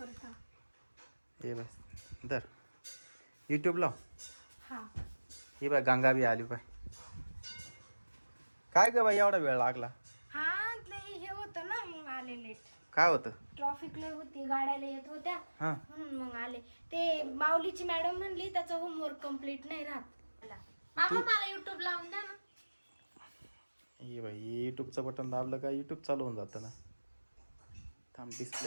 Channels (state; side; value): inverted; both; correlation -1.00